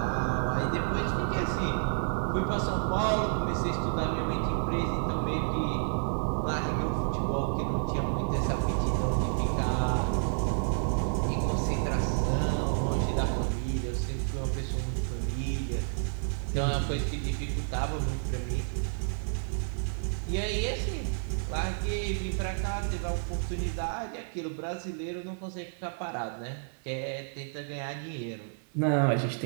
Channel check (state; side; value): silent; left; 57 dB below the other